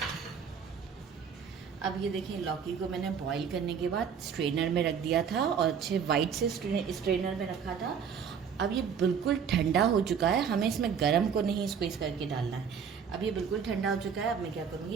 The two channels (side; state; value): left; quieter; 7.0 dB